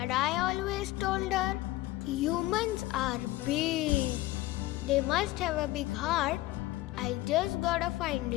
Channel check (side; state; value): right; quieter; 17.6 dB